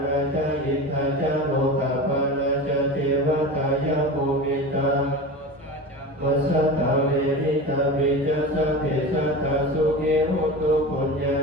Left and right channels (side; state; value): both; normal; correlation 0.29